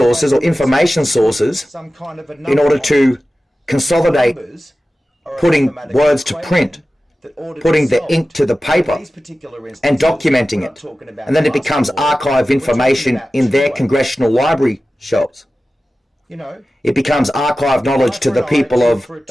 or information sources in order to consolidate putting words to print, putting the ink to the paper and documenting it. And then it becomes archive information in their congressional library shelves. It becomes archive knowledge to the people of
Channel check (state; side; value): normal; both; correlation 0.95